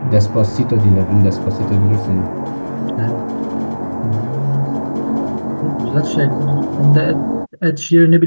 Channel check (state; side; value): inverted; both; correlation -1.00